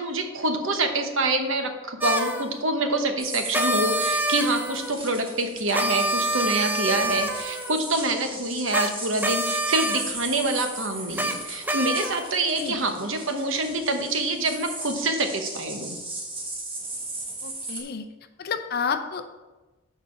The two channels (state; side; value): normal; both; correlation 0.03